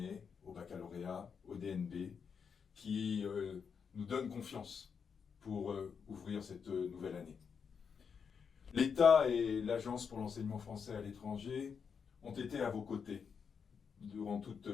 au baccalauréat, au DNB, qui nous donnent confiance pour ouvrir cette nouvelle année. L'État et l'Agence pour l'enseignement français à l'étranger ont été à vos côtés durant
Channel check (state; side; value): quieter; right; 6.4 dB